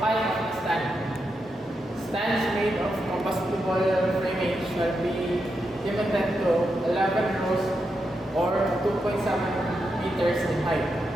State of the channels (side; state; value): both; normal; correlation 0.85